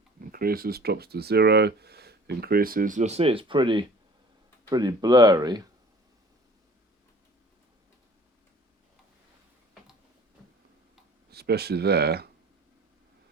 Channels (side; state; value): both; normal; correlation 0.49